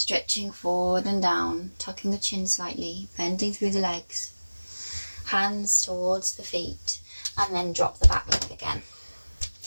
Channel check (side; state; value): both; inverted; correlation -1.00